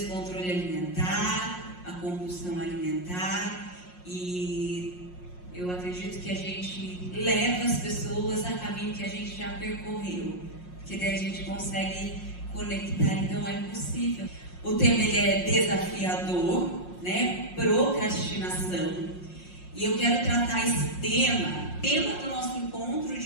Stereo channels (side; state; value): right; late; 5.6 ms